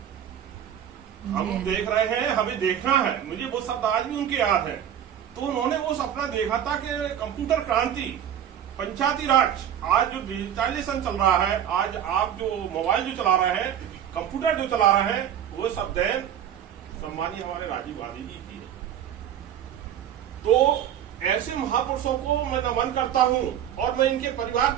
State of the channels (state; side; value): quieter; left; 10.0 dB